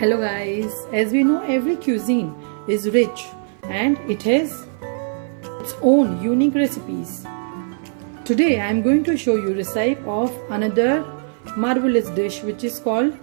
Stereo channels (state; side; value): silent; left; 56 dB below the other